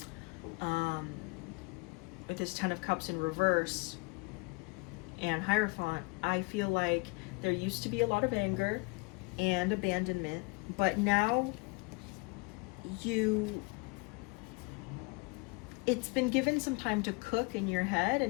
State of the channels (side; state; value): right; quieter; 28.2 dB